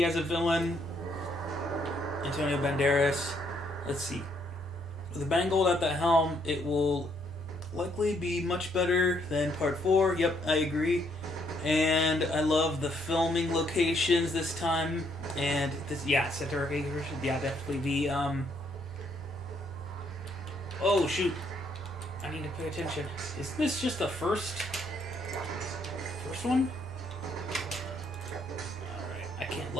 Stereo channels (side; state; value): both; normal; correlation 0.71